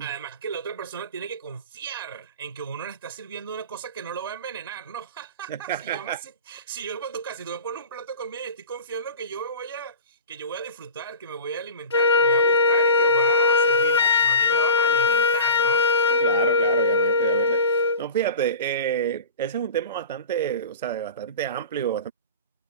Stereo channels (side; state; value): both; inverted; correlation -0.33